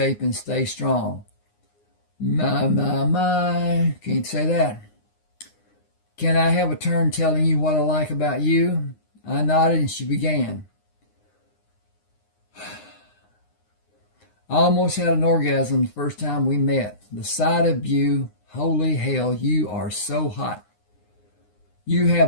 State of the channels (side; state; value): right; late; 9.7 ms